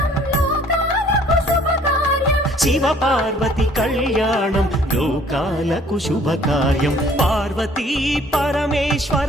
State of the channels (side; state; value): both; normal; correlation 0.57